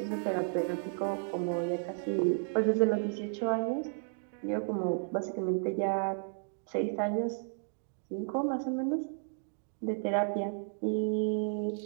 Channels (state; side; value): silent; left; digital silence